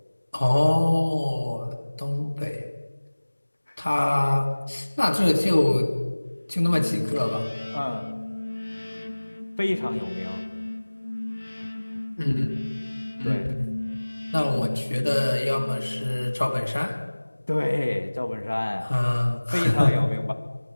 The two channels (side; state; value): both; inverted; correlation -1.00